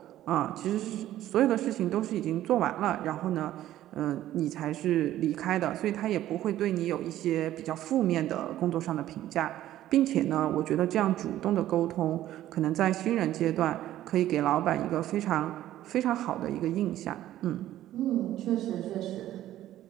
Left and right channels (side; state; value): left; quieter; 13.4 dB